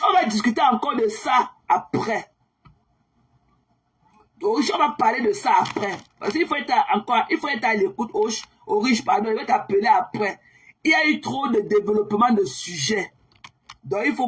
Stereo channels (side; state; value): both; identical; correlation 1.00